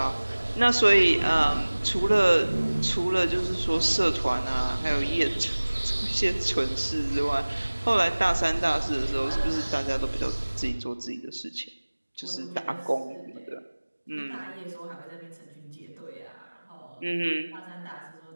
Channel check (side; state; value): both; inverted; correlation -1.00